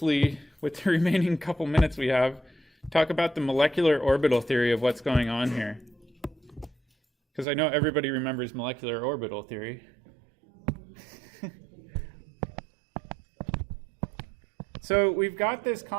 with the remaining couple minutes we have, talk about the molecular orbital theory of what's going on here. Because I know everybody remembers molecular orbital theory. So we've got this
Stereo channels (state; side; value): drops out; left; at 7.5 s